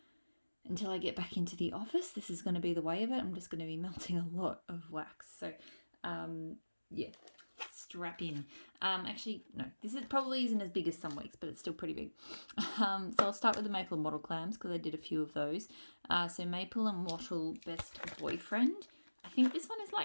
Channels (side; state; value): both; inverted; correlation -1.00